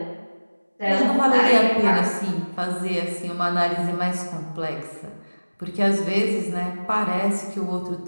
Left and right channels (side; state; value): both; inverted; correlation -1.00